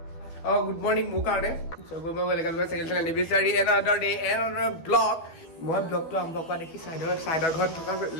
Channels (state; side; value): late; right; 12 ms